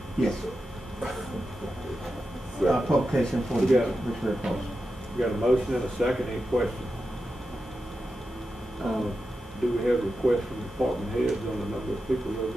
Yes, sir. Publication for We the got it. Richmond Post. We got a motion and a second, any questions? Do we have requests from department heads on the number of people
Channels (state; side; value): normal; both; correlation 0.90